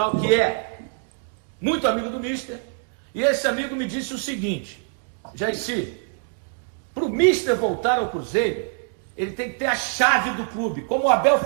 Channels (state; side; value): silent; left; 62 dB below the other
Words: que é muito amigo do Mister, e esse amigo me disse o seguinte: Jairci, para o Mister voltar ao Cruzeiro, ele tem que ter a chave do clube, como o Abel